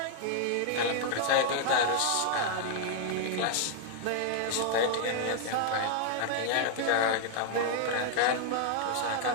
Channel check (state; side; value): different; both; correlation 0.00